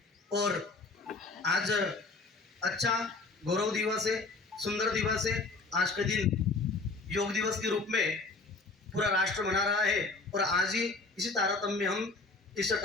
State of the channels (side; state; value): right; quieter; 3.7 dB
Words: और आज अच्छा गौरव दिवस है, सुंदर दिवस है। आज के दिन योग दिवस के रूप में पूरा राष्ट्र मना रहा है और आज ही इसी तारतम्य में हम इस